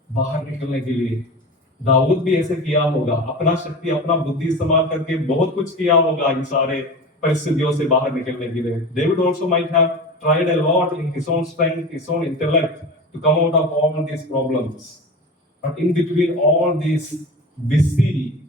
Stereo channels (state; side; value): normal; both; correlation 0.30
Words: बाहर निकलने के लिए। दाऊद भी ऐसे किया होगा, अपना शक्ति, अपना बुद्धि इस्तेमाल करके बहुत कुछ किया होगा इन सारे परिस्थितियों से बाहर निकलने के लिए। David also might have tried a lot in his own strength, his own intellect to come out of all these problems. But in between all these busy